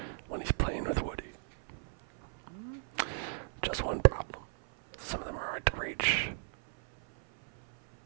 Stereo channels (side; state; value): left; silent; 55 dB below the other